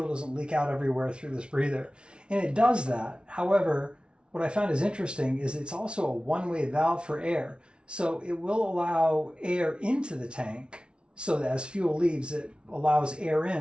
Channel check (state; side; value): late; left; 0.057 ms